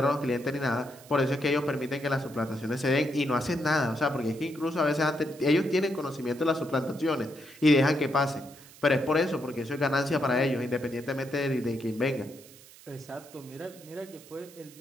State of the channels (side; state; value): right; noise; hiss, 21 dB below the sound